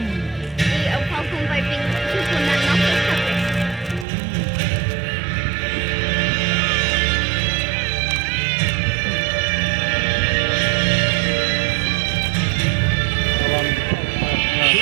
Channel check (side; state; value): left; drops out; at 4.0 s